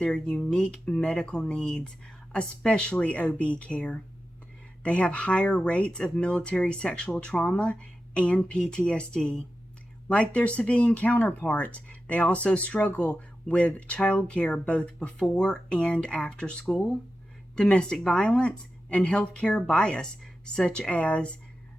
unique medical needs, especially OB care. They have higher rates of military sexual trauma and PTSD. Like their civilian counterparts, they also struggle with child care both before and after school, domestic violence, and healthcare bias, such as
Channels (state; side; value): normal; both; correlation 0.92